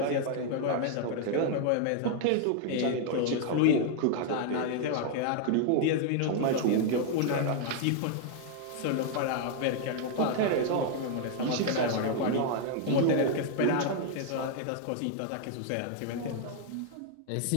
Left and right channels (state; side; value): different; both; correlation 0.00